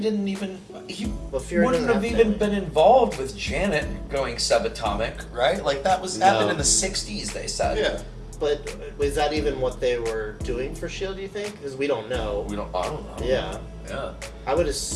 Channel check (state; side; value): identical; both; correlation 1.00